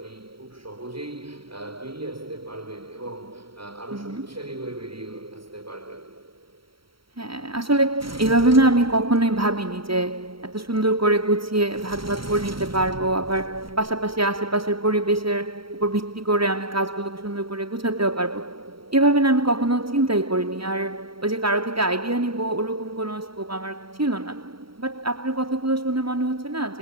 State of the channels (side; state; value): left; late; 0.74 ms